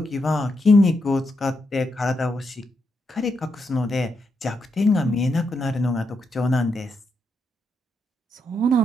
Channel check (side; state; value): both; normal; correlation 0.81